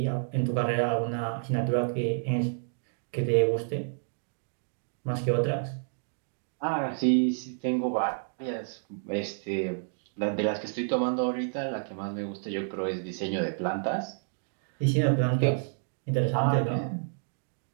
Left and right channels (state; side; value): silent; left; digital silence